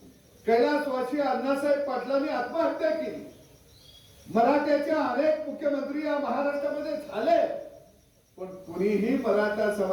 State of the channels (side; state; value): both; identical; correlation 1.00